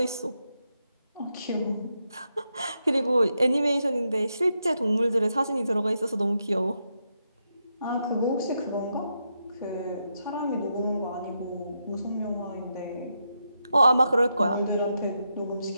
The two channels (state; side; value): inverted; both; correlation -0.83